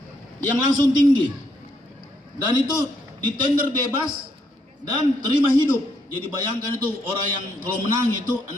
yang langsung tinggi, dan itu di tender bebas dan terima hidup. Jadi bayangkan itu orang yang kalau menang itu 6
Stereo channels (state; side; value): normal; both; correlation 0.74